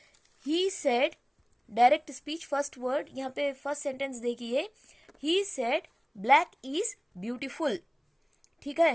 he said, direct speech first word, यहाँ पे फर्स्ट सेंटेंस देखिए, he said black is beautiful. ठीक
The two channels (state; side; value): identical; both; correlation 1.00